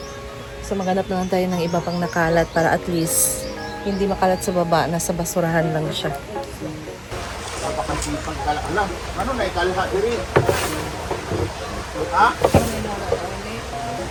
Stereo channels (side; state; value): both; identical; correlation 1.00